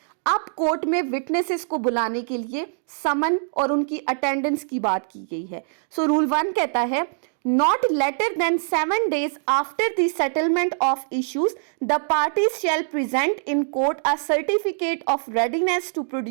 अब कोर्ट में विटनेसेस को बुलाने के लिए समन और उनकी अटेंडेंस की बात की गई है. सो रूल 1 कहता है not later than 7 days after the settlement of issues, the parties shall present in court a certificate of readiness to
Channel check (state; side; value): silent; left; digital silence